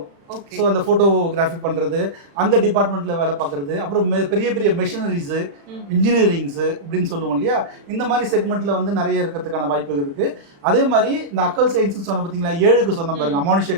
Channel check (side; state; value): left; late; 35 ms